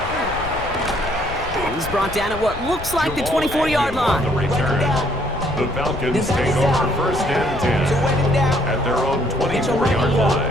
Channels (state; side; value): noise; left; rumble, 11 dB below the sound